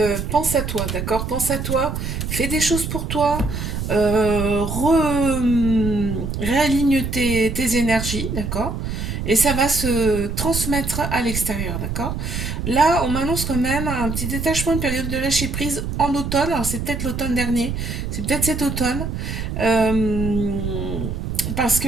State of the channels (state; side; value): noise; right; rumble, 4 dB below the sound